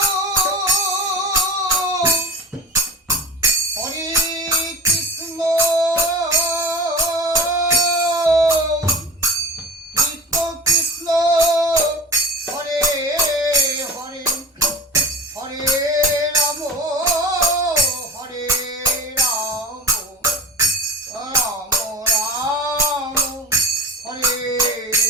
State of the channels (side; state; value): both; normal; correlation 0.35